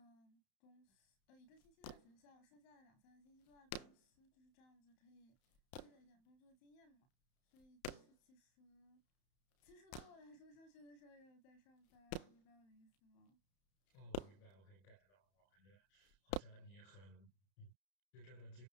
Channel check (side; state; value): right; late; 31 ms